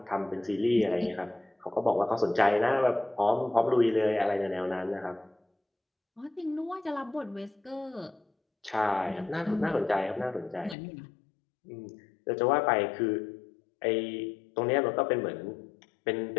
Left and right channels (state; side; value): drops out; right; at 10.8 s